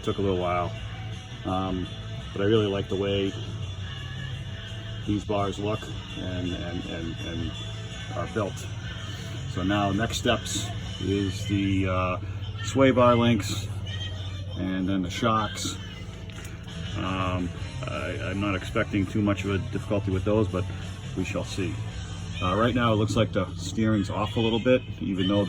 took a little while, but I really like the way these bars look and are built. So now next steps is the sway bar links and then the shocks. I'm not expecting too much of a difficulty with those, but we shall see. Right now it looks like the steering's off a little bit, even though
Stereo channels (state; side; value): identical; both; correlation 1.00